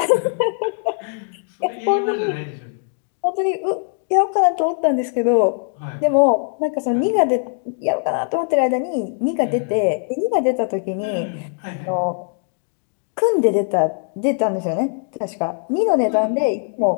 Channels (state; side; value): silent; right; 61 dB below the other